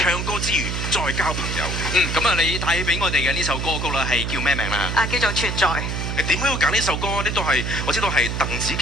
歌之餘再交朋友。咁啊，你帶俾我哋嘅呢首歌曲啦，係叫咩名啦？叫做存在。點解要揀呢首歌？呢都係我知道係鄧紫棋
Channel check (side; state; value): right; noise; hum, 3 dB below the sound